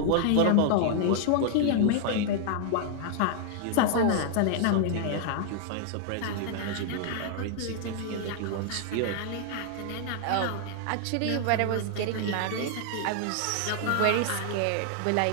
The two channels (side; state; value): both; different; correlation 0.00